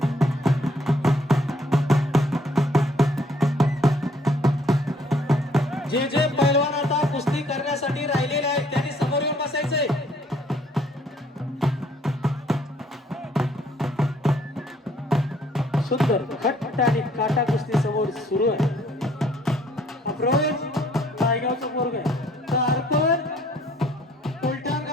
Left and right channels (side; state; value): both; normal; correlation 0.62